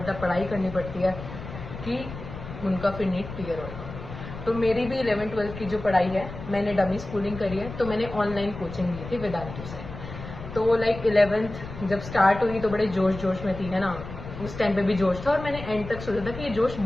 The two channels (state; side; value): noise; left; rumble, 11 dB below the sound